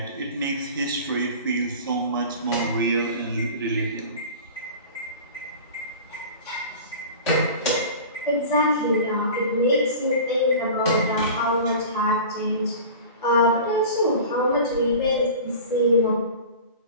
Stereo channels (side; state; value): both; inverted; correlation -0.37